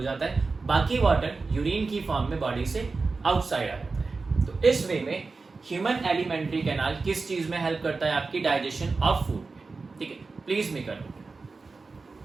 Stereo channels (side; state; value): left; quieter; 4.1 dB